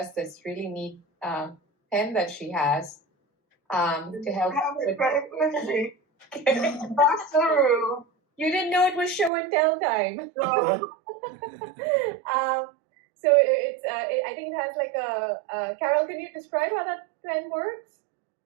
this really neat pen that she has to help. I have it right with me. Across the room. You didn't know it was show and tell time. So, So it's I think it has like a Carol, can you describe how that pen works?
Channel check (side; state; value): left; drops out; at 9.3 s